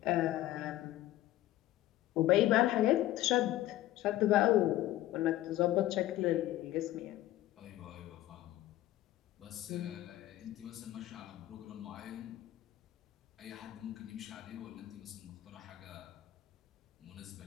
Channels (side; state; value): right; quieter; 15.0 dB